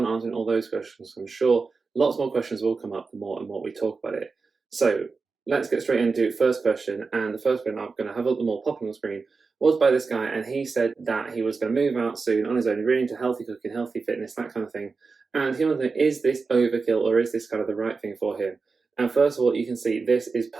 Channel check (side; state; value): left; quieter; 4.5 dB